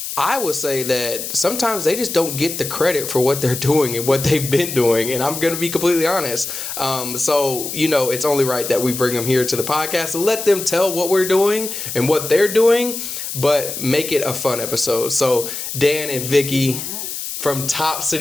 I would say that sometimes they just don't get the credit for what they're doing and what they've been doing. And I'm going to be completely honest. So, it's only right that we bring them here to the podcast and let them tell what we're doing and what they're doing, but make it a fun episode. So Dan and Vicki from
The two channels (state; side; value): noise; left; hiss, 6 dB below the sound